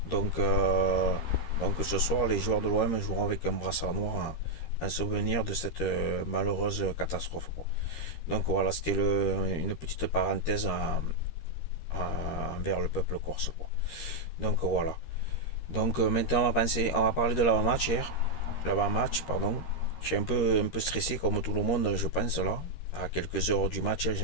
Donc, euh, donc ce soir, les joueurs de l'OM joueront avec un brassard noir en souvenir de cette malheureuse catastrophe, quoi. Donc voilà, c'était une petite parenthèse envers le peuple corse, quoi. Donc voilà. Donc maintenant, on va parler de l'avant-match hier. L'avant-match, pardon. Je suis un peu stressé comme tout le monde, je pense là. À quelques heures du match,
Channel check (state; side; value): late; right; 13 ms